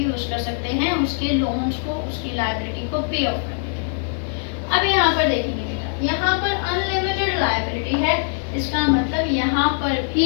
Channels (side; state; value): right; silent; digital silence